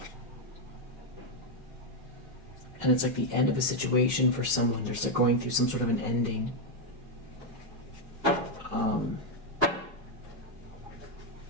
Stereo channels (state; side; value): normal; both; correlation 0.02